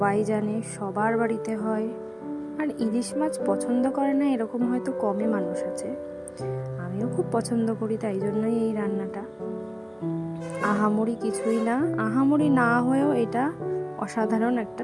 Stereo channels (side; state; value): both; identical; correlation 1.00